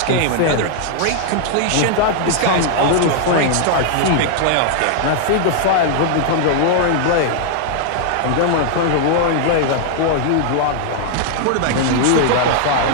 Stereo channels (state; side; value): different; both; correlation 0.00